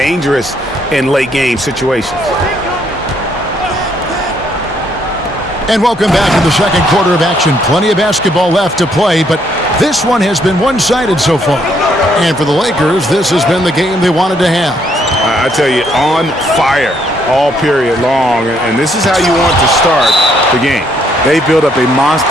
in late game situations. And welcome back to the second quarter of action. Plenty of basketball left to play, but this one has been one-sided so far. And for the Lakers, this has been the game they wanted to have. I tell you, on fire all period long, and this is how you want to start the game. They built up a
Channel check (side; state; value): both; normal; correlation 0.70